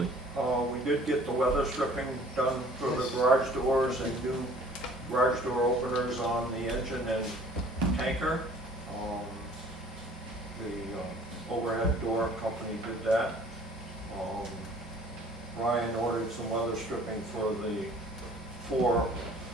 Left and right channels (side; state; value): both; normal; correlation 0.52